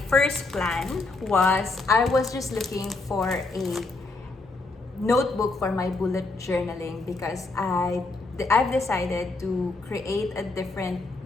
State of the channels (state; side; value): quieter; right; 3.4 dB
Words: first plan was I was just looking for a notebook for my bullet journaling because I've decided to create a different